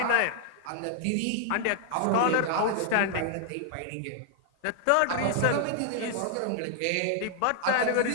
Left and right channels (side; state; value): both; different; correlation -0.01